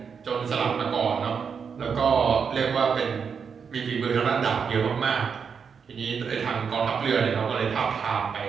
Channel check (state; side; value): quieter; left; 6.3 dB